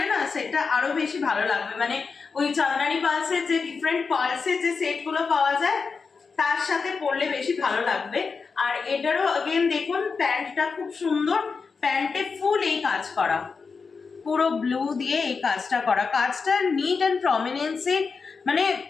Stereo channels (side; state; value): right; quieter; 5.0 dB